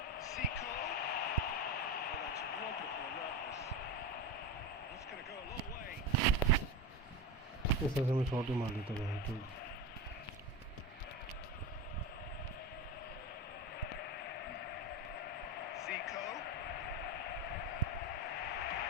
Zico. Oh, that's wonderful alertness. That's going to go a long way. इस तरह से मैं shot ही मार लेता हूँ तो Zico.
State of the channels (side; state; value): both; normal; correlation 0.21